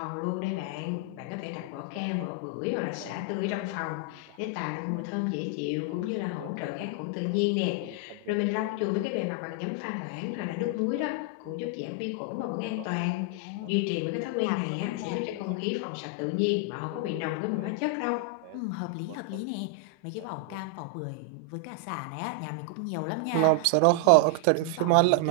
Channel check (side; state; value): both; different; correlation 0.00